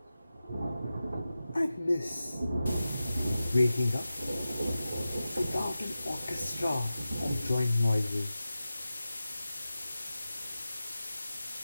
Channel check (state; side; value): inverted; both; correlation -0.94